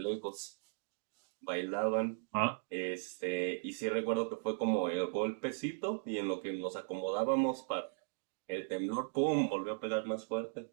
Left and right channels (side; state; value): left; silent; digital silence